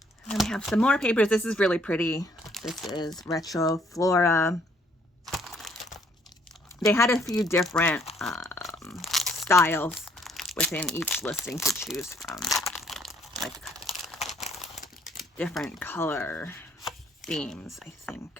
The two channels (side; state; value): both; normal; correlation 0.65